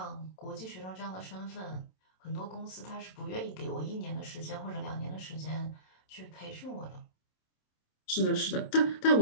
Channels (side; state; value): right; late; 27 ms